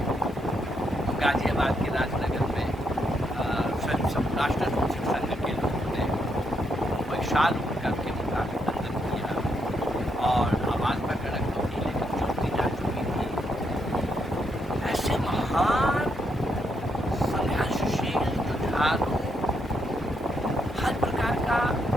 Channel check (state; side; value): normal; both; correlation 0.78